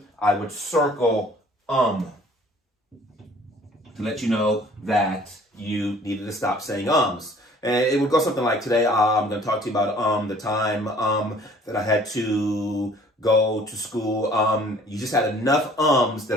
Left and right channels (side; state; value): both; normal; correlation 0.54